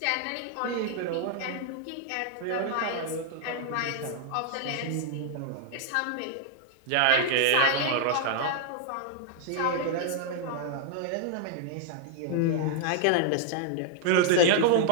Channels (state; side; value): different; both; correlation 0.00